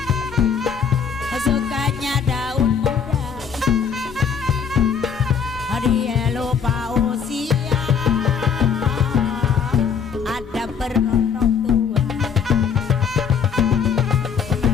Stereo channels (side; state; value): right; quieter; 6.8 dB